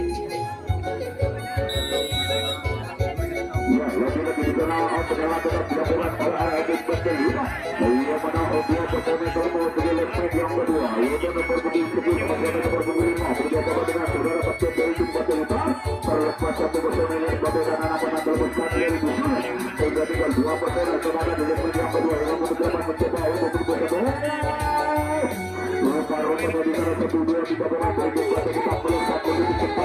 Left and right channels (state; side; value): identical; both; correlation 1.00